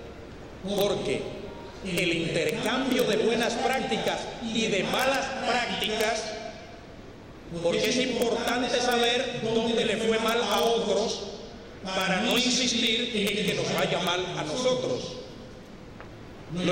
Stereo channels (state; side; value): identical; both; correlation 1.00